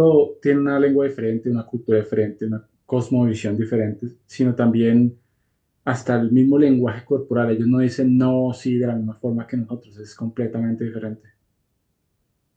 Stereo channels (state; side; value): identical; both; correlation 1.00